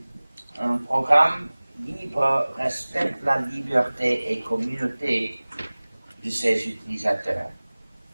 Un programme libre respecte la liberté et communauté de ses utilisateurs.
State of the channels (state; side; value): inverted; both; correlation -1.00